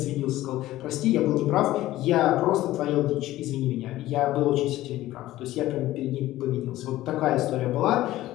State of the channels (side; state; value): right; quieter; 15.6 dB